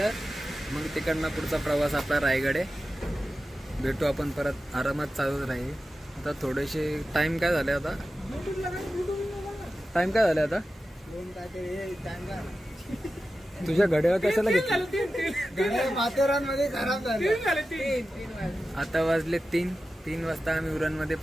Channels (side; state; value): both; normal; correlation 0.93